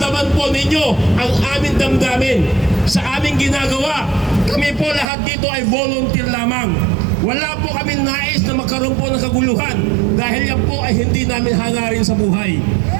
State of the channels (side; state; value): left; drops out; at 5.1 s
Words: po ninyo ang aming damdamin sa aming ginagawa. Kami po lahat dito ay volunteer lamang. Wala po kami nais na magkaroon po ng kaguluhan dahil yan po ay hindi namin hangarin sa buhay.